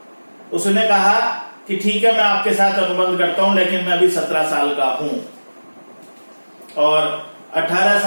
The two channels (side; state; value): both; inverted; correlation -1.00